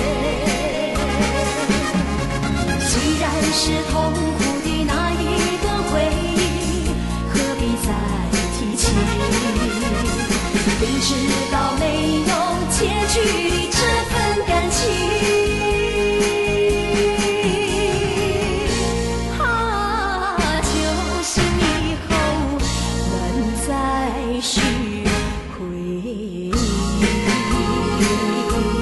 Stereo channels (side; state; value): both; identical; correlation 1.00